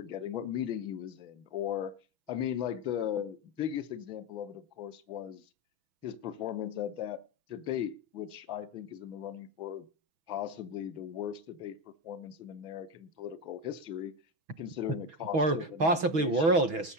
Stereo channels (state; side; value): late; left; 6.2 ms